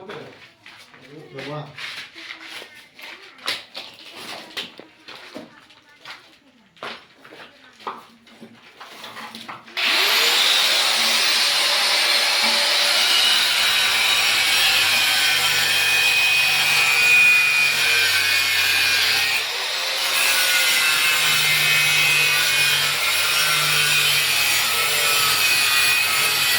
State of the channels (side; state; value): both; identical; correlation 1.00